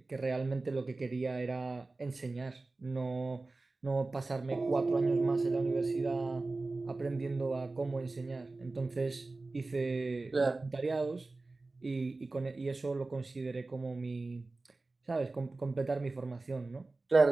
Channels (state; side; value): quieter; left; 3.4 dB